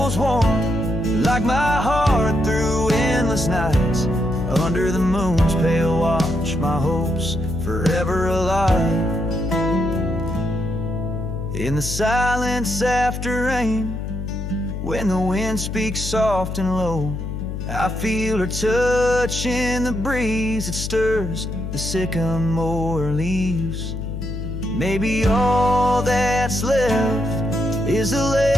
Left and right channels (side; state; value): left; noise; hum, 5 dB below the sound